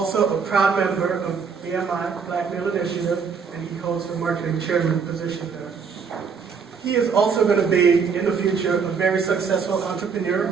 a proud member of BMI, Black Male Initiative, and he holds the Marketing Chairman position there. He is also going to be, in the future, a very successful entrepreneur.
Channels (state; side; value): quieter; left; 5.9 dB